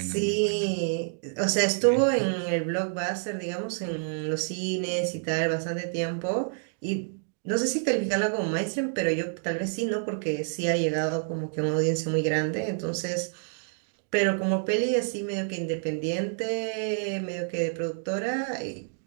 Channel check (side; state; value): left; silent; digital silence